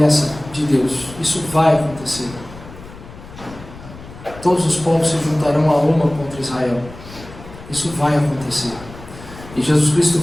de Deus. Isso vai acontecer. Todos os povos se juntarão a uma contra Israel. Isso vai acontecer. E Jesus Cristo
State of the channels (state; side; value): noise; left; rumble, 16 dB below the sound